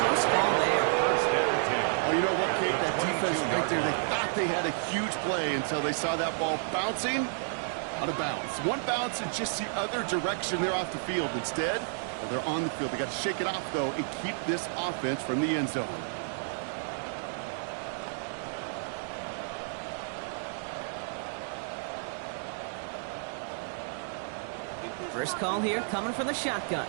ball there. First and 10. Oh, you know what, Kate? That defense right there, they thought they had a huge play until they saw that ball bouncing out of bounds. One bounce in just the other direction. They're off the field. Instead, well, they're on the field. They got to shake it off, though, and keep this offense from the end zone. First call here coming from the shotgun.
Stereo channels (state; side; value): silent; left; digital silence